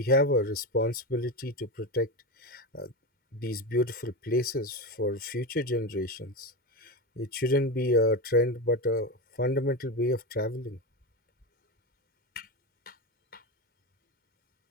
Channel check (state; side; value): normal; both; correlation 0.17